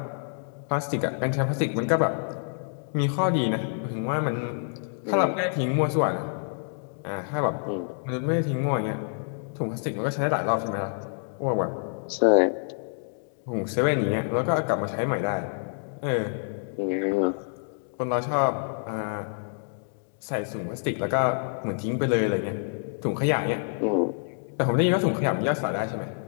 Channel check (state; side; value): silent; right; digital silence